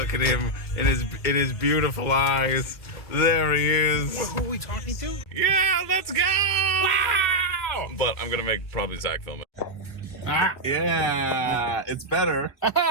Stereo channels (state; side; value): late; right; 2.3 ms